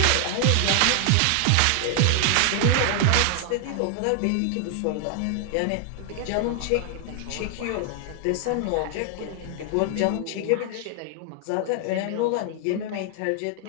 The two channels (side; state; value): both; different; correlation 0.00